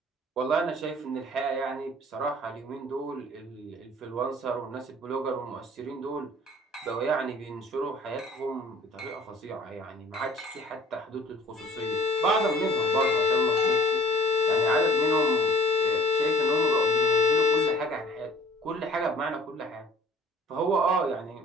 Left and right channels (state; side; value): normal; both; correlation 0.52